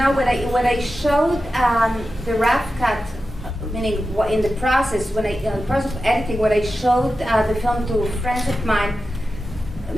When I showed the rough cut, meaning in the process, in the process of editing, when I showed the film to friends of mine,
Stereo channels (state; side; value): normal; both; correlation 0.92